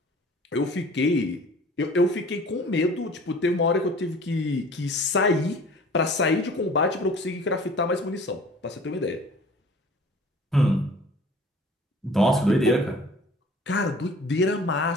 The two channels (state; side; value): normal; both; correlation 0.48